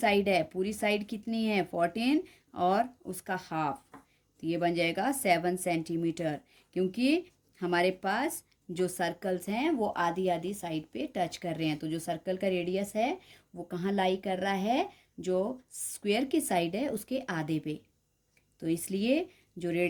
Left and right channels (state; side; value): identical; both; correlation 1.00